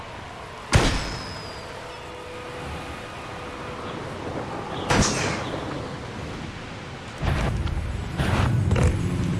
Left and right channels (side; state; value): both; identical; correlation 1.00